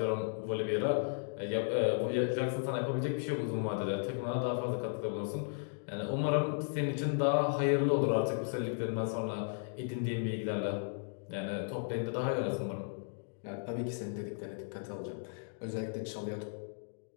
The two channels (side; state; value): right; silent; digital silence